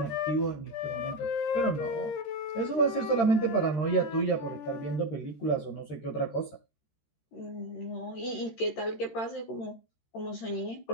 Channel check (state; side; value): late; right; 13 ms